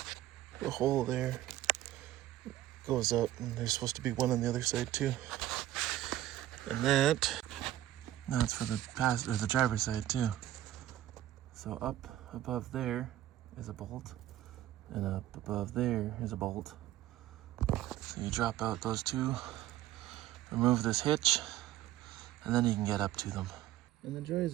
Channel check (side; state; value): left; quieter; 13.8 dB